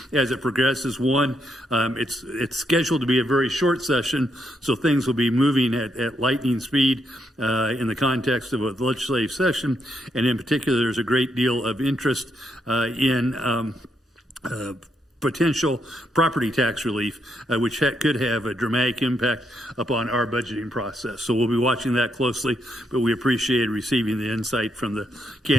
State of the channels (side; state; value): both; normal; correlation 0.78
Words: as it progresses. One, it's scheduled to be a very short session, so things will be moving at lightning speed in the context of a legislative session, and in particular, there's a great deal of interest in potential property tax relief, which could have a dramatic impact upon our budgeting process. So we'll be watching that closely, but we appreciate receiving the insight from the